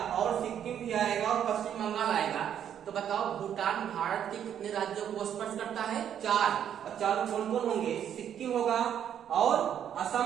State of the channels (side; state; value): left; quieter; 9.4 dB